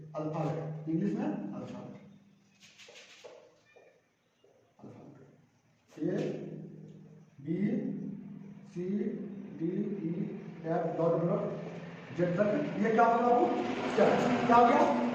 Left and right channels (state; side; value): identical; both; correlation 1.00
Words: अल्फा है, इंग्लिश में alpha, a b c d e f dot dot z तक, ये क्या होगा बाबू? चल। क्या हो गया?